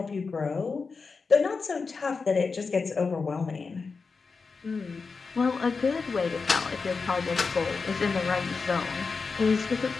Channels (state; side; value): quieter; right; 4.7 dB